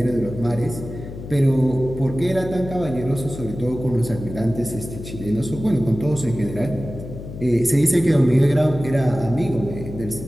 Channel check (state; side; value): noise; left; hum, 11 dB below the sound